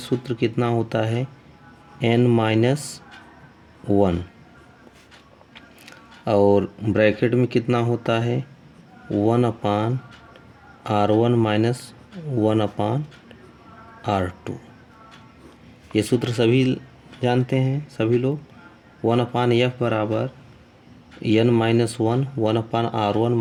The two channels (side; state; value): both; identical; correlation 1.00